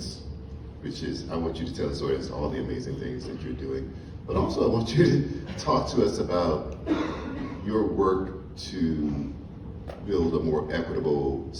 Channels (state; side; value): identical; both; correlation 1.00